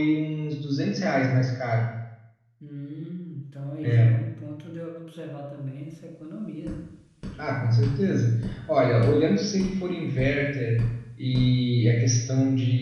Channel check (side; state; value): both; identical; correlation 1.00